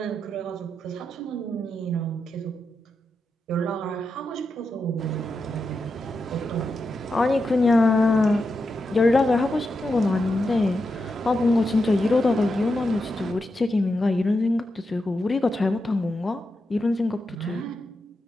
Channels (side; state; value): both; normal; correlation 0.87